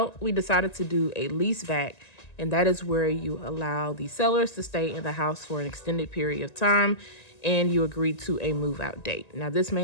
we decided to do a lease back, and that is where you allow the sellers to stay in the house for an extended period of time and you agree to a move out date. Now, this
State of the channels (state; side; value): late; right; 1.9 ms